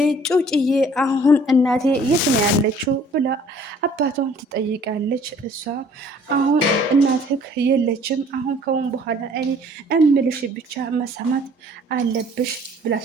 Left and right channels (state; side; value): normal; both; correlation 0.55